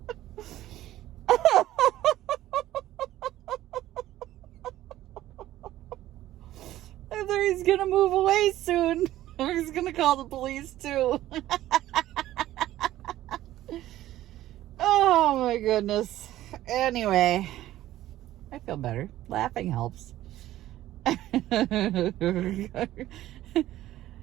He's gonna move away soon. Or he's gonna call the police too. Oh my goodness. Anyway, I feel better. Laughing helps.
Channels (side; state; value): left; quieter; 14.3 dB